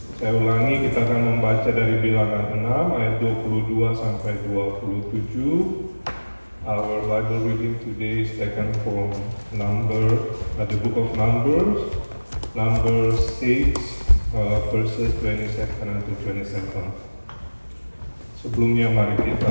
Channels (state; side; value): inverted; both; correlation -1.00